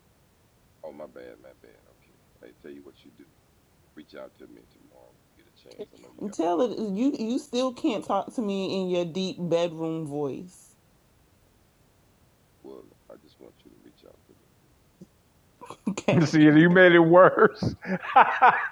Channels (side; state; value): both; identical; correlation 1.00